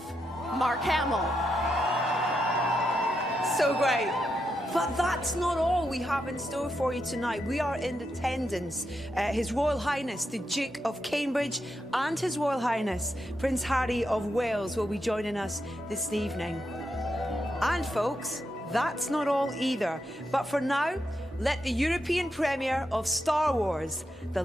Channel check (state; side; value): normal; both; correlation 0.84